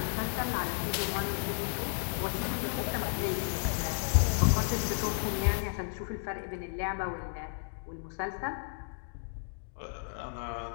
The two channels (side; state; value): right; silent; digital silence